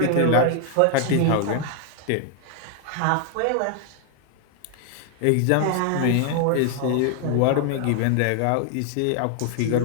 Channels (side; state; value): both; different; correlation 0.00